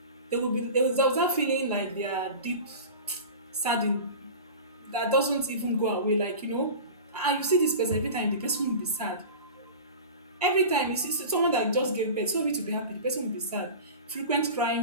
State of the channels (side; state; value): both; inverted; correlation -0.34